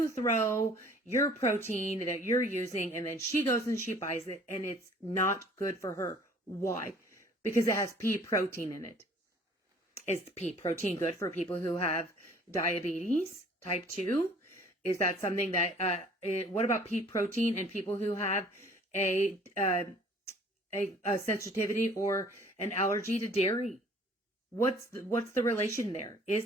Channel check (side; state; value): both; normal; correlation 0.53